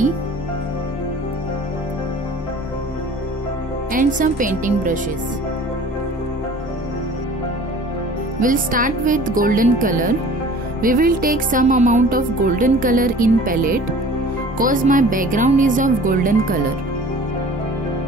and some painting brushes. We'll start with golden color. We will take some amount of golden color in palette cause my background is of golden color.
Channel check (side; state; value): both; normal; correlation 0.46